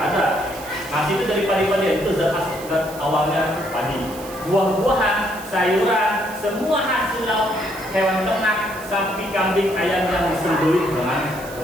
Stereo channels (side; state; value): right; noise; hiss, 16 dB below the sound